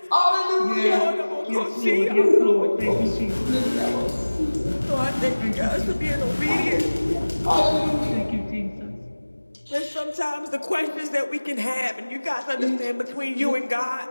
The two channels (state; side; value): inverted; both; correlation -1.00